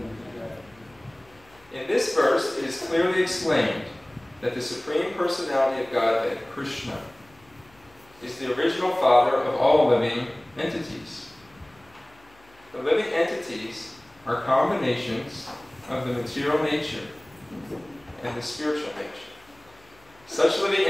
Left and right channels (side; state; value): left; noise; hum, 29 dB below the sound